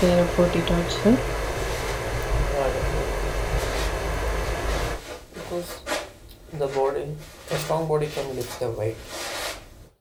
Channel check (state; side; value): identical; both; correlation 1.00